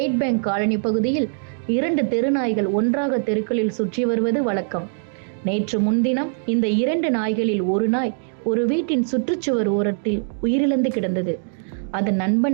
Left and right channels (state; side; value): silent; left; 64 dB below the other